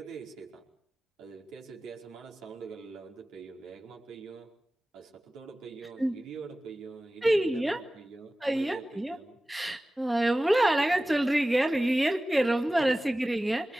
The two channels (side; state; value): both; normal; correlation 0.96